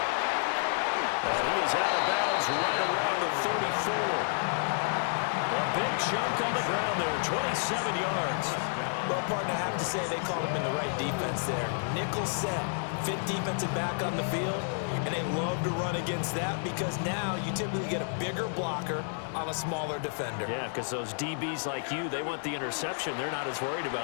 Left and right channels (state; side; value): silent; right; 58 dB below the other